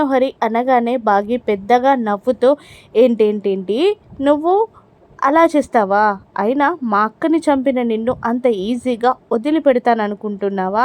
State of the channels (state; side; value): identical; both; correlation 1.00